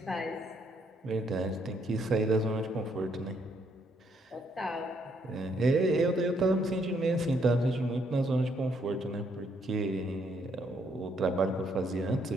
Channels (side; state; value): both; normal; correlation 0.72